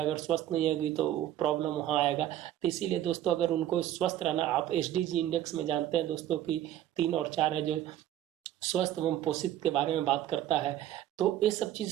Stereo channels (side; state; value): left; quieter; 12.2 dB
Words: अगर स्वस्थ नहीं होगी तो प्रॉब्लम वहाँ आएगा। तो इसीलिए दोस्तों, अगर उनको स्वस्थ रहना, आप एसडीजी इंडेक्स में जानते हैं दोस्तों कि 3 और 4 है जो स्वस्थ एवं पोषित के बारे में बात करता है, तो ये सब चीज